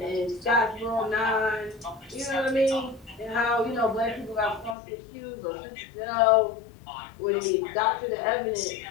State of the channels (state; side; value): drops out; right; at 4.8 s